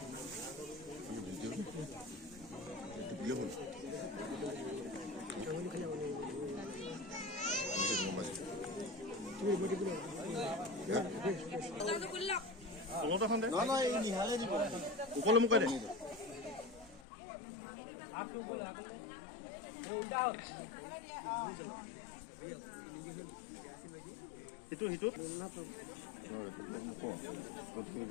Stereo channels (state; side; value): drops out; right; at 17.0 s